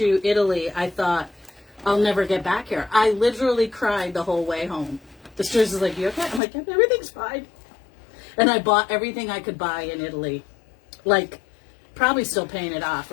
Italy, I thought, I'll never get back here. I literally cried the whole way home. The stewardess was like, you okay? I'm like, yep, everything's fine. And I bought everything I could buy in Italy. Like, probably still paying it off,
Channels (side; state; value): right; drops out; at 6.4 s